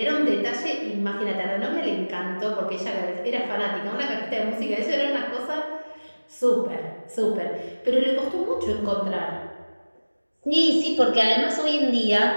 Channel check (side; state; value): both; inverted; correlation -1.00